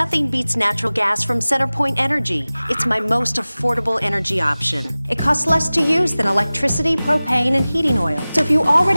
beats natural gas from CenterPoint Energy. It's my most affordable energy option. It costs less to use than electricity, propane, and heating oil. So if you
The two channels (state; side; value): inverted; both; correlation -0.98